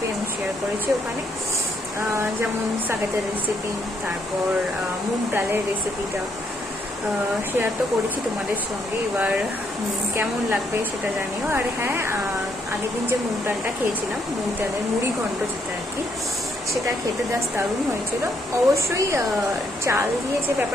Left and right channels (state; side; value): normal; both; correlation 0.73